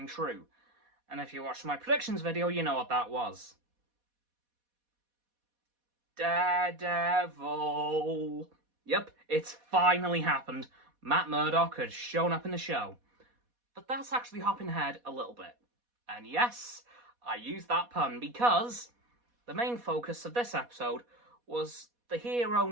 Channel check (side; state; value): left; late; 4.1 ms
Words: true. And if you watched my predictions video, you know what that was. Daredevil! Yep, it's finally happened. Matt Murdock has shown up in the show. But that's actually hopping ahead a little bit. And yes, I used that pun because the main focus of this episode was the hero